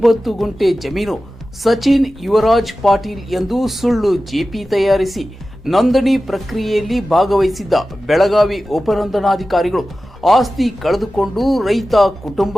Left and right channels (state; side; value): normal; both; correlation 0.95